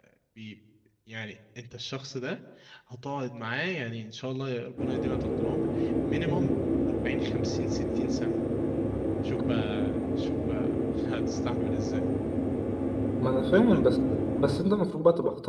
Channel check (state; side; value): identical; both; correlation 1.00